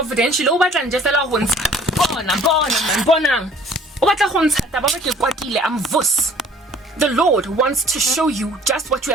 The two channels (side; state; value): both; normal; correlation 0.53